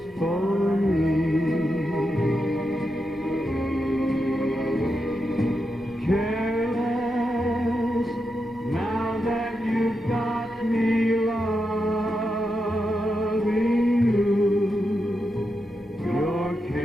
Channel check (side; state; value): both; normal; correlation 0.86